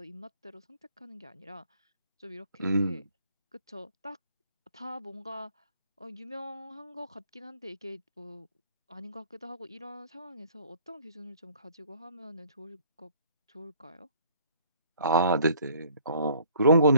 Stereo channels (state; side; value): inverted; both; correlation -0.57